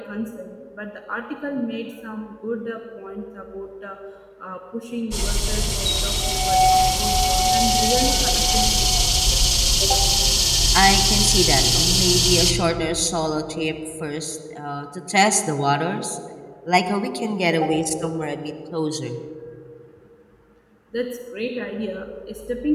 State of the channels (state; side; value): identical; both; correlation 1.00